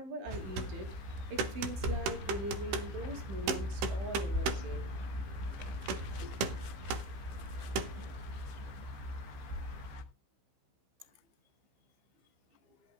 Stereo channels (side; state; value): left; late; 15 ms